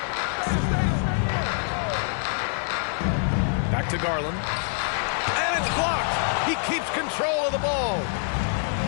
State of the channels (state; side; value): silent; right; digital silence